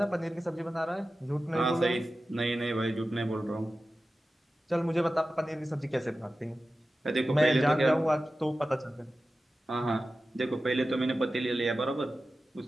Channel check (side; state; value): both; normal; correlation 0.94